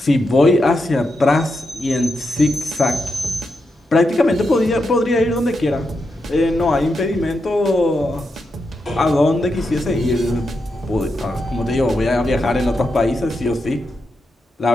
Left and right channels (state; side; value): normal; both; correlation 0.85